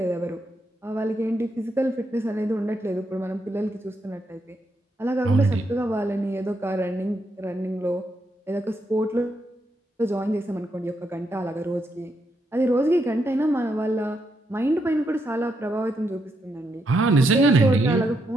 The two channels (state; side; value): normal; both; correlation 0.80